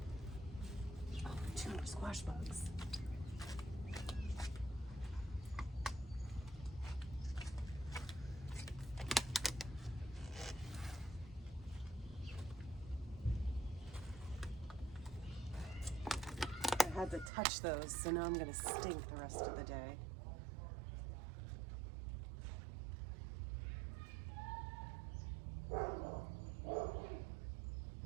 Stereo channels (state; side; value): drops out; left; at 17.3 s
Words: Oh, 2 more squash bugs. I had to touch those, so now I'm gonna stink the rest of the day.